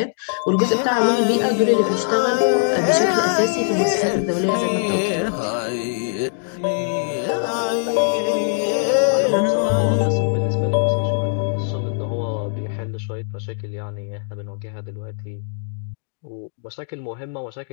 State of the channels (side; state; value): right; silent; digital silence